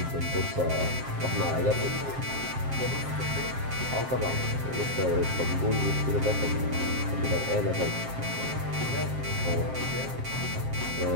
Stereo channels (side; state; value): left; late; 7.5 ms